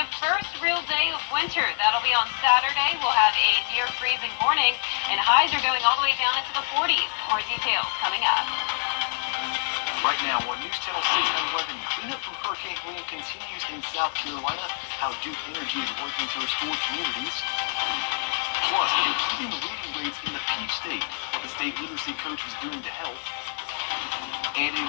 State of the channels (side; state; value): right; silent; digital silence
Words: first real day of winter. That'll be on Saturday. We'll have a near-freezing morning, and highs are going all the way down into the 40s. More details coming up. Right now on News Channel 6 and 11, cleanup from Hurricane Helene continues in South Carolina, how Duke Energy is working to restore communities. Plus, improving reading rates in the Peach State, what the state literacy coach is doing to help. And a